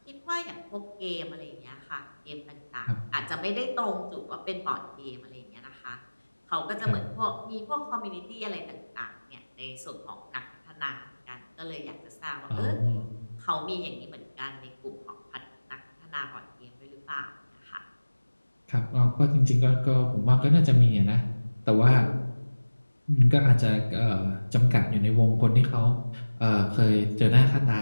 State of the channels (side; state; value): both; inverted; correlation -1.00